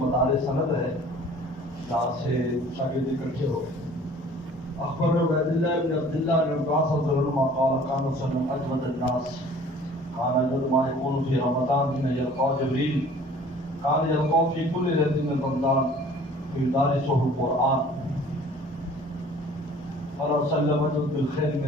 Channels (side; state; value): both; normal; correlation 0.50